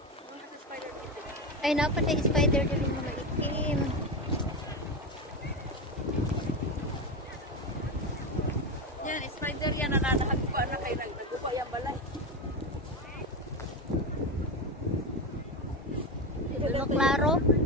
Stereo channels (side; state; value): both; normal; correlation 0.16